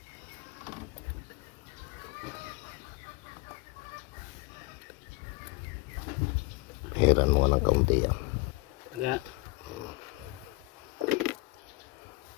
Heran mo ng kaunti yan. Kaya,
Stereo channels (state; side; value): quieter; right; 23.6 dB